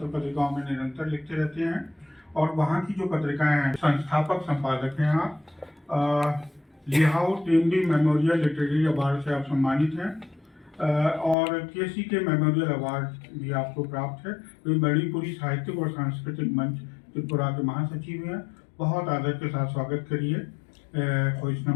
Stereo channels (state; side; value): drops out; right; at 11.4 s